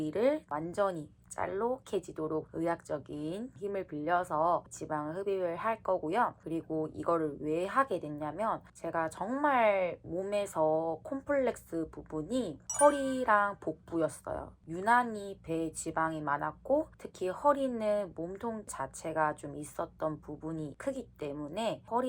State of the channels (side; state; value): both; identical; correlation 1.00